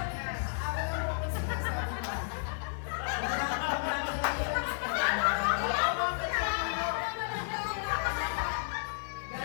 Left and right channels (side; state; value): right; silent; digital silence